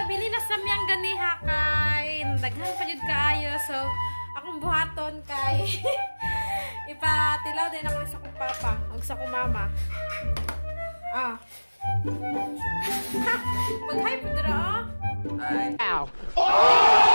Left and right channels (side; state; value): both; inverted; correlation -1.00